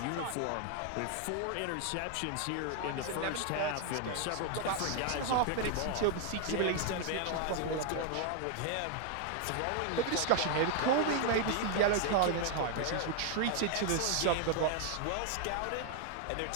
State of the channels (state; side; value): different; both; correlation 0.00